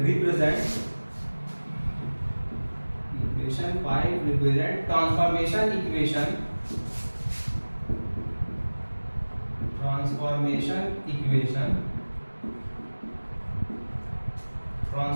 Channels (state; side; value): inverted; both; correlation -1.00